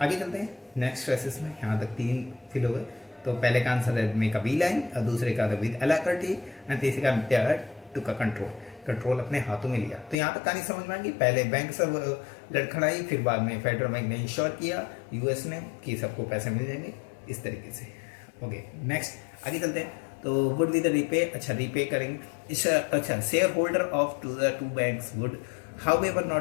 आगे चलते हैं नेक्स्ट फ्रेसेस में, यहाँ तक 3 फिल हो गए। तो पहले का आंसर है में का बी लाइन, और दूसरे का विद एलाक्रिटी, एंड तीसरे का टू का कंट्रोल अपने हाथों में लिया। तो यहाँ तक कहानी समझ में आएगी, पहले बैंक सब लड़खड़ाई, फिर बाद में फेडरल बैंक ने इंश्योर किया यूएस ने कि सबको पैसे मिल जाएंगे, इस तरीके से। ओके, नेक्स्ट आगे चलते हैं। तो वुड बी द रीपे, अच्छा रीपे करेंगे, अच्छा share holder of the two banks would however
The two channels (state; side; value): drops out; right; at 10.2 s